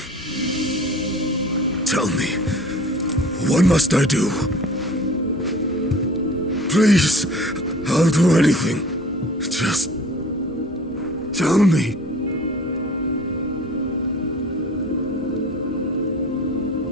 Tell me, what must I do? Please, I'll do anything. Just tell me.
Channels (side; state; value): both; normal; correlation 0.45